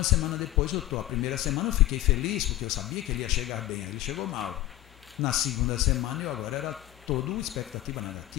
semana depois a primeira semana eu fiquei feliz, porque eu sabia que ele ia chegar bem, ele chegou mal. Na segunda semana eu agora era toda expectativa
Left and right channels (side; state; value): right; quieter; 15.8 dB